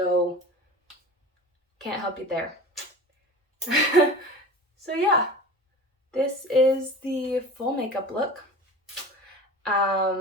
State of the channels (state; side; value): normal; both; correlation 0.36